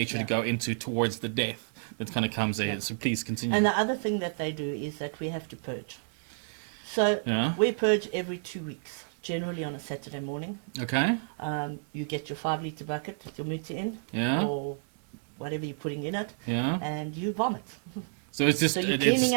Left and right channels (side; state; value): left; silent; digital silence